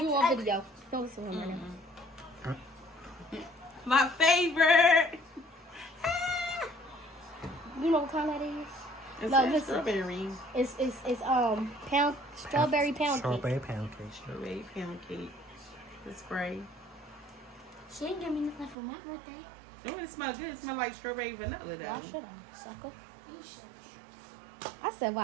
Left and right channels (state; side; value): drops out; left; at 18.8 s